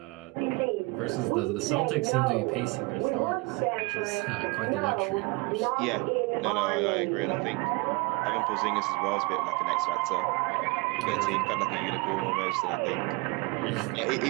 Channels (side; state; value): left; quieter; 26.3 dB